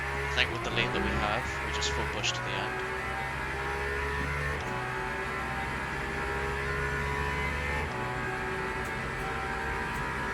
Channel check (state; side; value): identical; both; correlation 1.00